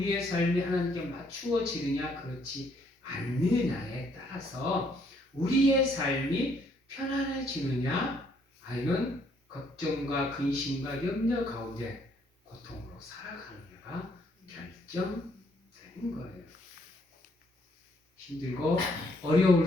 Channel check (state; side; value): normal; both; correlation 0.68